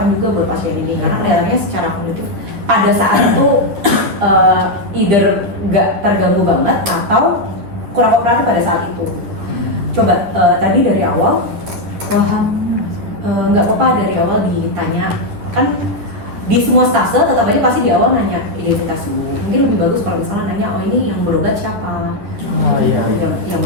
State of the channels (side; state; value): left; late; 10 ms